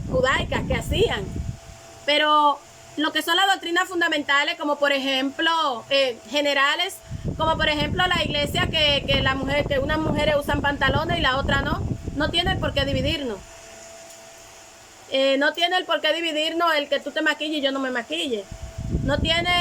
judaicas que hacían. Pero lo que son las doctrinas fundamentales, como por ejemplo, generales, como por ejemplo la iglesia que unas mujeres usan pantalones y la otra no tiene por qué dividirnos. No tiene el por qué dividirnos el que tú te maquilles y yo no me maquille. No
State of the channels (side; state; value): both; identical; correlation 1.00